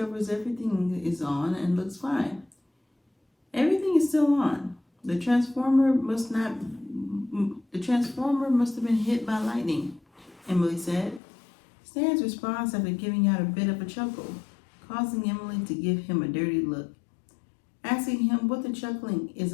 everything is on and looks fine. Everything is still on. The transformer must have been hit by lightning, Emily said. Stan's response after giving out a bit of a chuckle, causing Emily to give him a dirty look, asking him what the chuckling is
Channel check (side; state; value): right; drops out; at 11.2 s